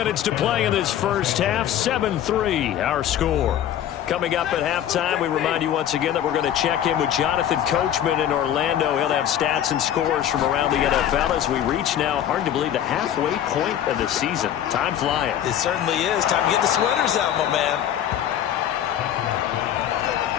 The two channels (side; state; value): right; quieter; 10.6 dB